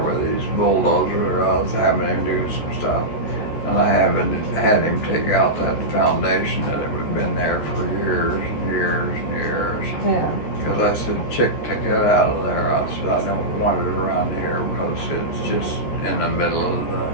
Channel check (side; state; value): right; late; 14 ms